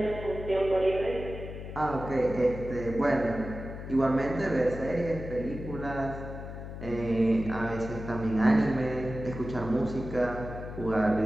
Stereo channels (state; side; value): noise; left; hum, 9 dB below the sound